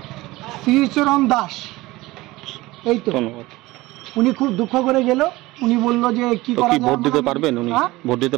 শ্রীচরণ দাস। এই তো উনি খুব দুঃখ করে গেল, উনি বললো যে কি করা যায়, ভোট দিতে পারবেন উনি? ভোট দিতে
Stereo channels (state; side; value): quieter; left; 19.5 dB